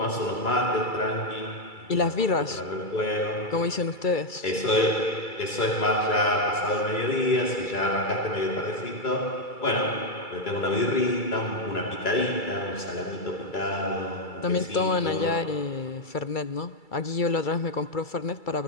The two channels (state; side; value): late; right; 2.3 ms